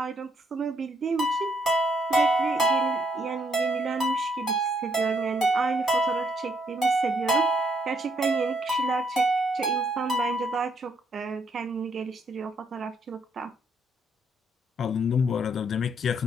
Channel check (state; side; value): normal; both; correlation 0.72